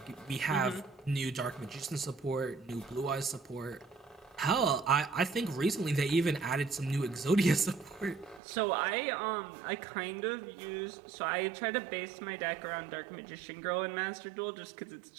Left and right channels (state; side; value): drops out; left; at 8.4 s